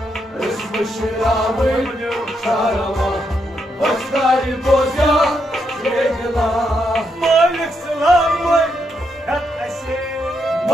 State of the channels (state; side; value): normal; both; correlation 0.80